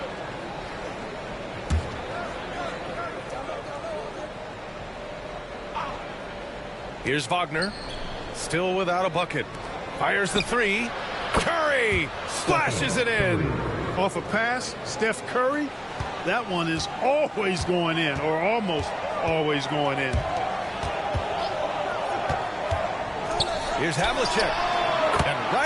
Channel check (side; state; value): both; identical; correlation 1.00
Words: Here's Wagner. Still without a bucket. Fires the 3. Curry splashes it in. Off a pass, Steph Curry. That one is always going in, or almost always going in. Here's Havlicek. And